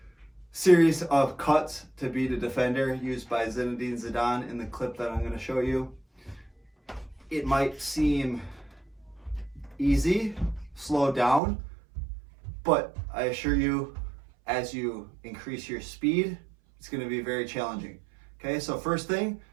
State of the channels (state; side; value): drops out; left; at 11.4 s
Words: series of cuts to beat a defender used by Zinedine Zidane in the clip that I'm going to show you. It might seem easy, slow down, but I assure you, as you increase your speed, it's going to be very challenging. Okay, so first thing